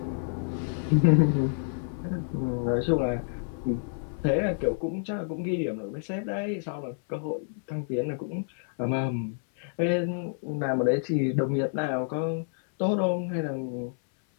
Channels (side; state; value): right; silent; 59 dB below the other